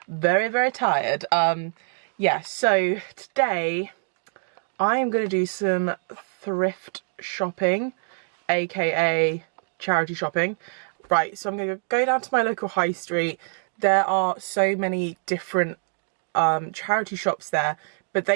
very tired. Yeah, so today I am gonna do some thrift shopping, aka charity shopping. Right, so I'm gonna go down to my local high street. There are so many different charity shops there, but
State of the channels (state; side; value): silent; left; digital silence